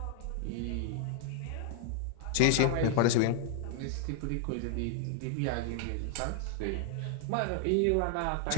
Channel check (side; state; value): both; different; correlation 0.00